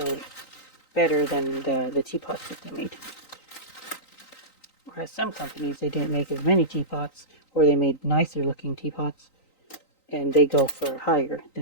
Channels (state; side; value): late; right; 3.9 ms